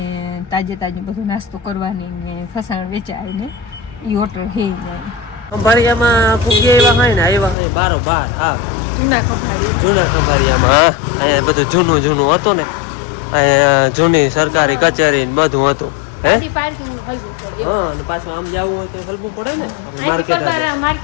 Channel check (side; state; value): right; drops out; at 7.6 s